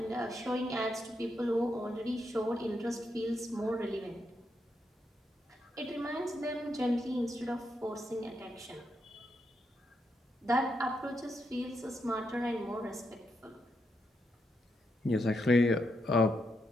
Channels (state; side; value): normal; both; correlation 0.82